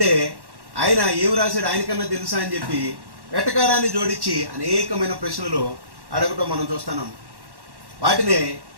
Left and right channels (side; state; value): left; late; 1.1 ms